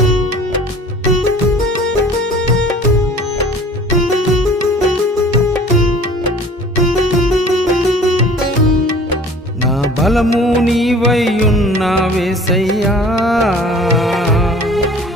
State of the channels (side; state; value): both; normal; correlation 0.47